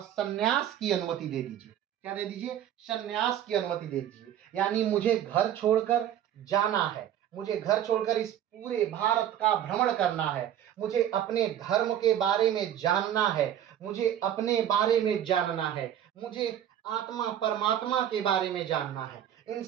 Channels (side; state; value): left; quieter; 10.6 dB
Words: की अनुमति दे दीजिए। क्या दे दीजिए, सन्यास की अनुमति दे दीजिए। यानी मुझे घर छोड़कर जाना है, मुझे घर छोड़कर इस पूरे भारत का भ्रमण करना है, मुझे अपने धर्म के बारे में जानना है, मुझे अपने बारे में जानना है, मुझे आत्मा परमात्मा के बारे में जानना है, इन